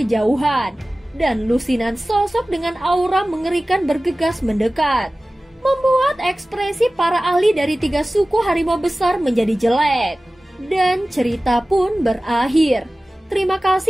dan lusinan sosok dengan aura mengerikan bergegas mendekat, membuat ekspresi para ahli dari 3 suku harimau besar menjadi jelek. Dan cerita pun berakhir. Terima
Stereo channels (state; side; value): normal; both; correlation 0.97